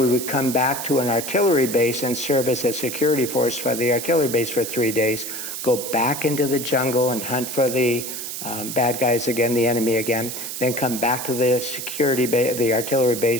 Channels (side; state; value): right; noise; hiss, 6 dB below the sound